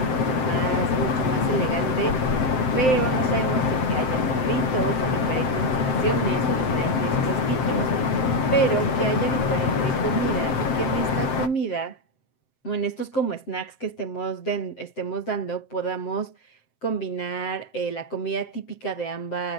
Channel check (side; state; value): right; late; 7.7 ms